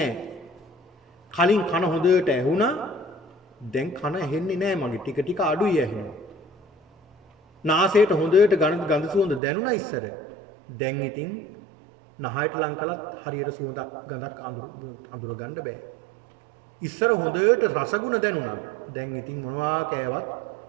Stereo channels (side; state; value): left; drops out; at 9.4 s